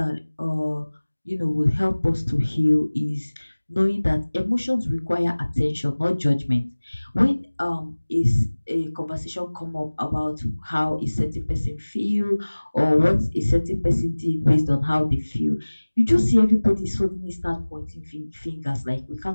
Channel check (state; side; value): inverted; both; correlation -1.00